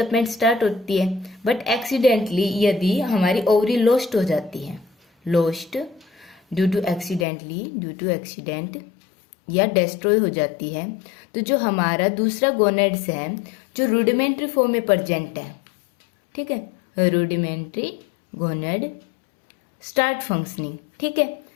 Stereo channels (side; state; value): right; drops out; at 7.2 s